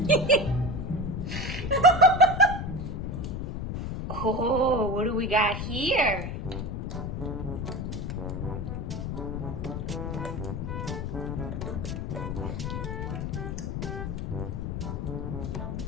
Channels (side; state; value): left; noise; rumble, 4 dB below the sound